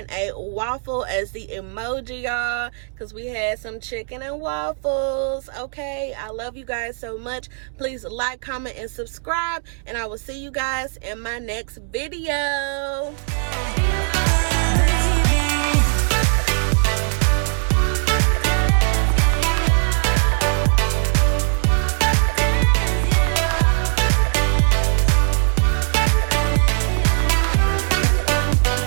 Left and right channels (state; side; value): silent; left; 58 dB below the other